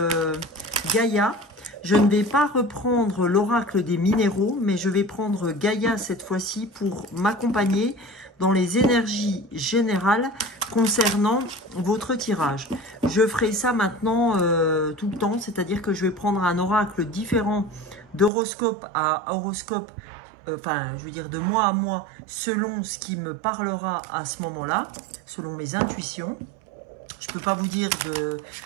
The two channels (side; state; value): left; drops out; at 18.3 s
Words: Gaïa. Je ne vais pas reprendre l'oracle des minéraux, mais je vais prendre Gaïa cette fois-ci pour m'accompagner dans les énergies générales concernant votre tirage. Je ferai ça maintenant tout le temps, c'est-à-dire que je vais prendre un oracle différent d'horoscope à horoscope, je veux dire de mois à mois, selon ce qui me parlera à ce moment-là, selon mes intuitions. Je ne peux pas vous dire